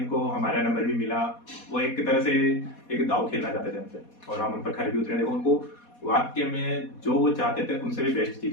हमारा नंबर भी मिला। वो एक तरह से एक दाव खेलना चाहते थे हमसे और हम उन पर खरे भी उतरे। देखो, उनको वाक्य में जो वो चाहते थे उनसे भी बेस्ट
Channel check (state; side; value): late; right; 4.2 ms